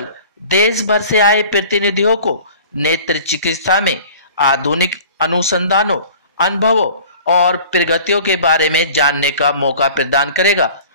देश भर से आए प्रतिनिधियों को नेत्र चिकित्सा में आधुनिक अनुसंधानों, अनुभवों और प्रगतियों के बारे में जानने का मौका प्रदान करेगा,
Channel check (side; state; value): both; inverted; correlation -0.44